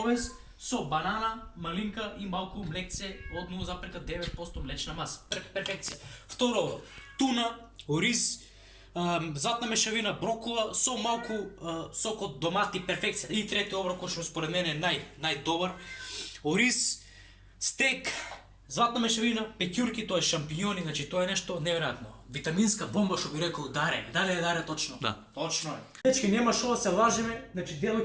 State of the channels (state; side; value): identical; both; correlation 1.00